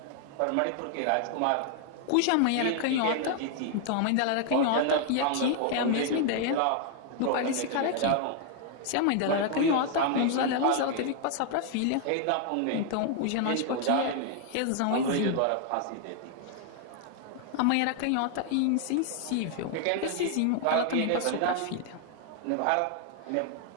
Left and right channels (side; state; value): both; different; correlation 0.00